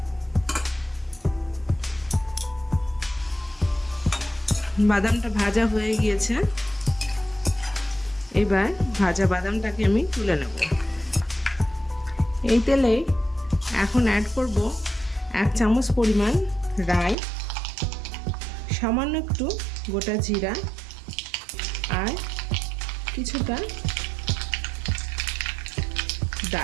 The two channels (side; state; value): left; drops out; at 17.2 s